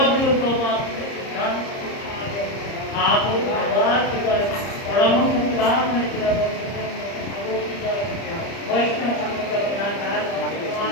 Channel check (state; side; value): late; right; 30 ms